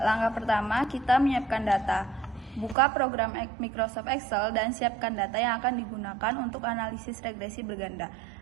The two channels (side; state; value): left; drops out; at 2.8 s